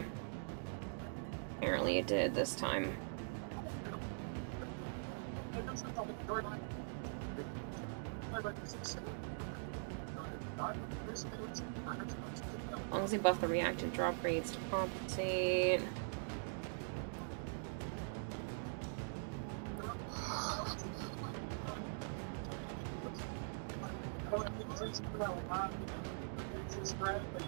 apparently it did this time. As long as they buff the reactive drop rates to compensate.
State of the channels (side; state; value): left; silent; digital silence